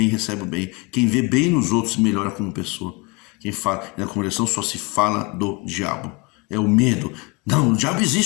recebe o bem. Quem vê bem nos outros, melhora como pessoa. Quem fala, na congregação só se fala do diabo. É o medo. Não, o diabo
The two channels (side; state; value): right; quieter; 28.1 dB